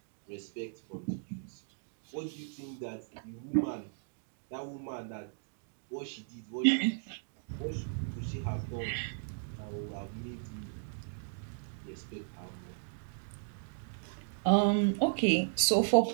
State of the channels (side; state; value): left; silent; digital silence